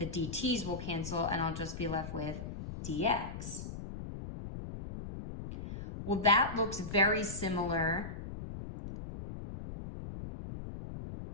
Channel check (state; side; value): noise; left; rumble, 8 dB below the sound